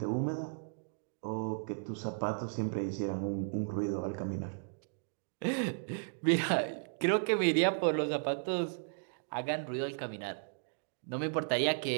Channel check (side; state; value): left; silent; digital silence